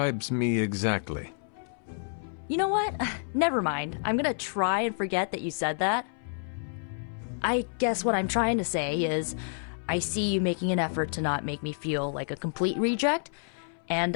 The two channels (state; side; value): silent; right; 58 dB below the other